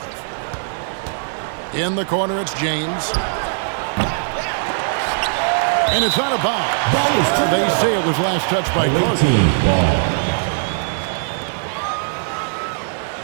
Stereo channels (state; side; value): silent; left; digital silence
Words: In the corner, it's James. And it's out of bounds. Ball is turned They over. say it was last touched by Away Carter. team ball.